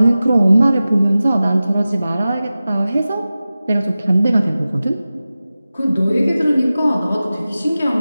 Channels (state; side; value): inverted; both; correlation -0.96